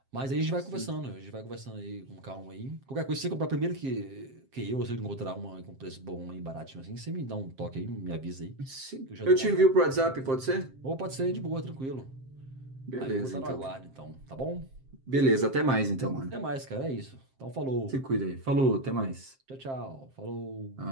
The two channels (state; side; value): late; left; 7.6 ms